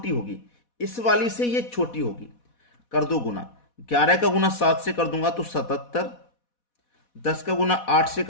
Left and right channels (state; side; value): late; right; 4.1 ms